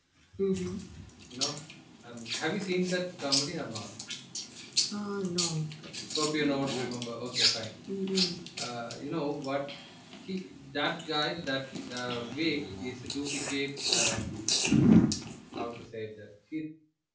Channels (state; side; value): identical; both; correlation 1.00